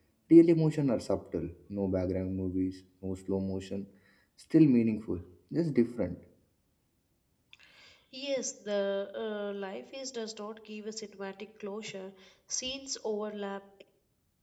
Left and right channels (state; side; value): identical; both; correlation 1.00